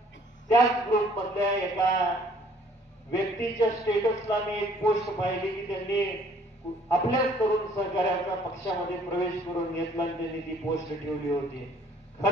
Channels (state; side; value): normal; both; correlation 0.59